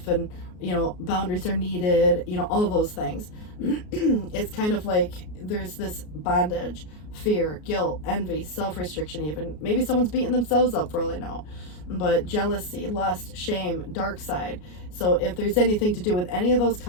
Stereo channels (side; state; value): right; late; 33 ms